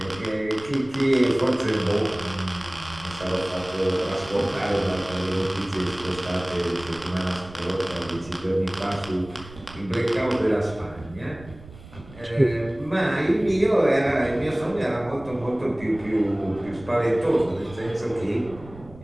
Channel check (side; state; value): right; noise; rumble, 18 dB below the sound